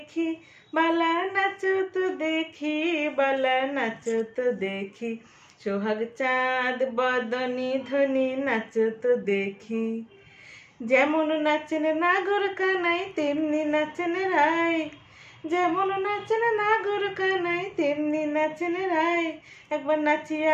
বালা নাচো তো দেখি, বালা নাচো তো দেখি, সোহাগ চাঁদ বদনি ধ্বনি নাচো তো দেখি। যেমন নাচেন নাগর কানাই তেমনি নাচেন রাই, যেমন নাচেন নাগর কানাই তেমনি নাচেন রাই। একবার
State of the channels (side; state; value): both; identical; correlation 1.00